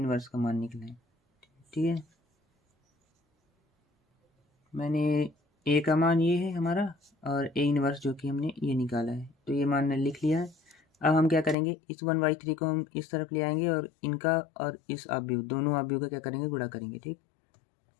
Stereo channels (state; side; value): drops out; right; at 11.6 s